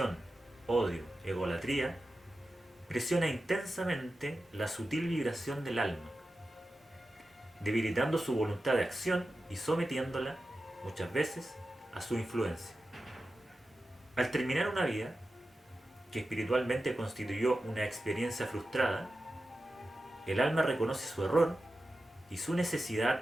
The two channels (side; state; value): both; normal; correlation 0.93